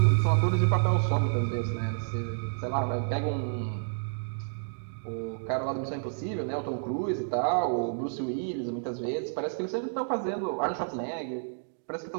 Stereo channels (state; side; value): silent; left; digital silence